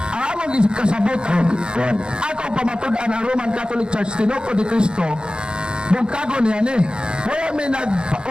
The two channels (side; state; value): left; late; 0.049 ms